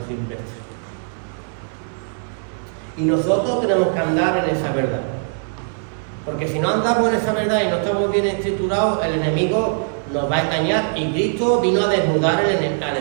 silvestre. Y nosotros tenemos que andar en esa verdad. Porque si no andamos en esa verdad y no estamos bien estructurados, el enemigo nos va a engañar. Y Cristo vino a desnudar al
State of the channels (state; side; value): silent; left; digital silence